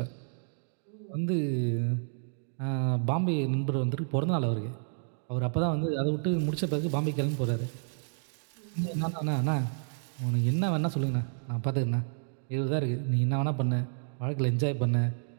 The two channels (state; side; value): silent; left; digital silence